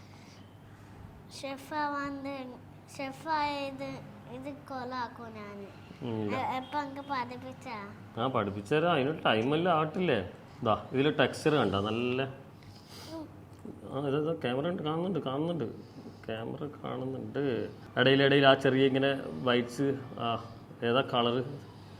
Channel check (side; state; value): both; identical; correlation 1.00